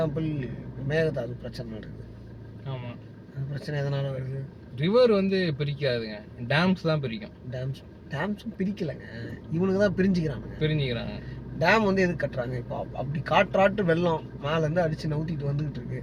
மேகதாது பிரச்சனை நடக்குது. ஆமாம். அந்த பிரச்சனை எதனால வருது? ரிவர் வந்து பிரிக்காதுங்க, டேம்ஸ் தான் பிரிக்கும். டேம்ஸும் பிரிக்கலைங்க, இவனுக்கு தான் பிரிஞ்சுக்கிறாங்க. டேம் வந்து எதுக்கு கட்டுறாங்க? இப்போ அப்படி காற்றாட்டு வெள்ளம் மேலேருந்து அடித்து நவுத்திட்டு வந்துகிட்டு இருக்கு.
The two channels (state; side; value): identical; both; correlation 1.00